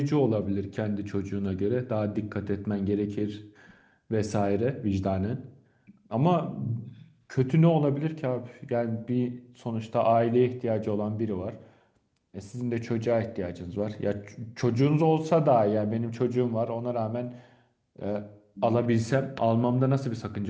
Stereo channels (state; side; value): identical; both; correlation 1.00